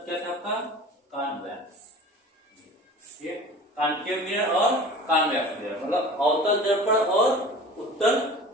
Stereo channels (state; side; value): normal; both; correlation 0.40